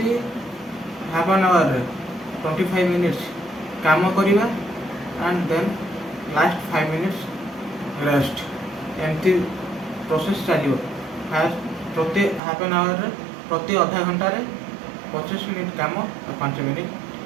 ହାଫ୍ ଆନ୍ ଆୱାରରେ 25 ମିନିଟ୍ସ କାମ କରିବା and then last 5 minutes rest. ଏମିତି ପ୍ରୋସେସ୍ ଚାଲିବ। ଫାର୍ଷ୍ଟ ପ୍ରତି ହାଫ୍ ଆନ୍ ଆୱାରରେ ପ୍ରତି ଅଧା ଘଣ୍ଟାରେ 25 ମିନିଟ୍ କାମ ଆଉ 5 ମିନିଟ୍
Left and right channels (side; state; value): left; drops out; at 12.4 s